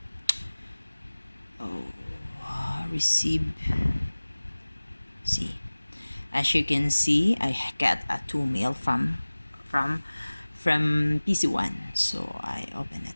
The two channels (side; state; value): both; inverted; correlation -1.00